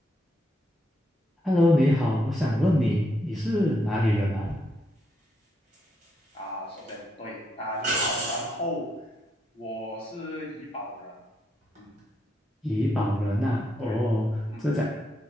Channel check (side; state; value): both; normal; correlation 0.79